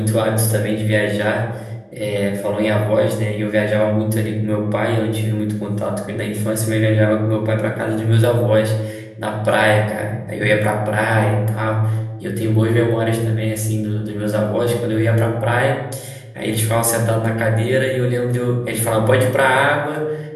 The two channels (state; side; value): identical; both; correlation 1.00